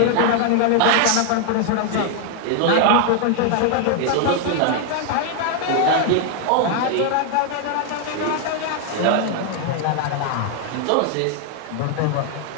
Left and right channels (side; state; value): both; different; correlation 0.00